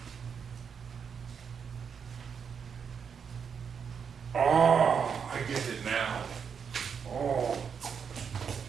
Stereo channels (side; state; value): left; quieter; 6.7 dB